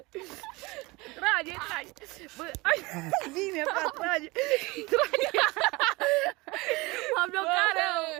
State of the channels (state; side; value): quieter; left; 23.5 dB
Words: Trage! Bă, bine, frate, trage! M-am blocat rău!